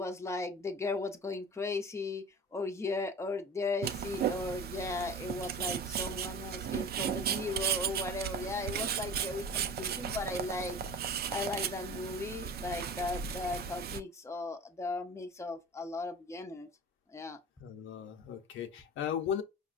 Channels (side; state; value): both; normal; correlation 0.36